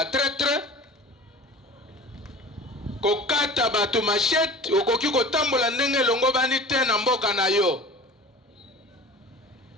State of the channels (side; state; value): both; normal; correlation 0.40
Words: traître. Kokata bato machette okoki kotambola ndenge longo bani te na mboka na yo.